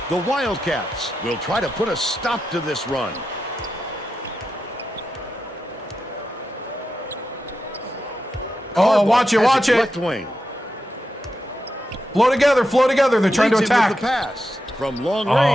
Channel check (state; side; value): normal; both; correlation 0.88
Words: The Wildcats will try to put a stop to this run. Oh, watch it, watch it. Left wing. Flow together, flow together. They're trying to attack. The pass from long